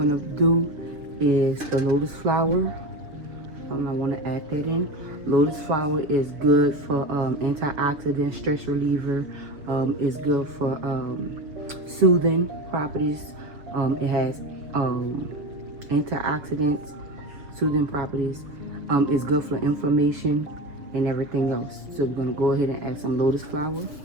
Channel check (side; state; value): left; late; 6.8 ms